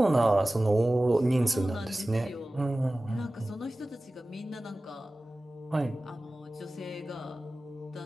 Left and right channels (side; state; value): both; normal; correlation 0.97